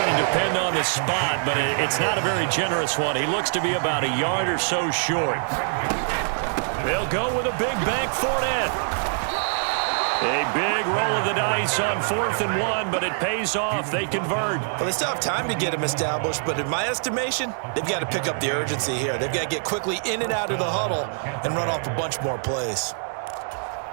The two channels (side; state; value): left; silent; digital silence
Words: to depend on the spot, but it's not a very generous one. He looks to be about a yard or so short. They'll go with a big bank Fournette. A big roll of the dice on 4th and 1, but it pays off. They convert. Well, they still have time to get him established, but in my estimation, they've got to pick up the urgency here. They've got to get quickly in and out of the huddle and run off a bunch more plays.